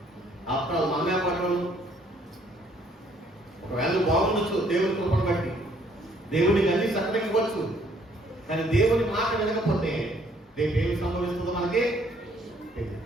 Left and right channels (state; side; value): normal; both; correlation 0.64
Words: అప్పుడు మనమే పట్టడం ఒకవేళ బాగుండొచ్చు, దేవుని కృపను బట్టి దేవుడికి అన్ని సక్కనివ్వచ్చు. కానీ దేవుని మాట వినకపోతే రేపు ఏమి సంభవిస్తుందో మనకి